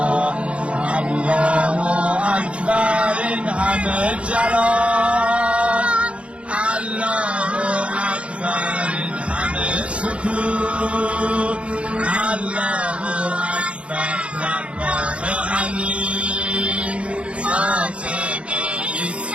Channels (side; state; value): left; late; 0.060 ms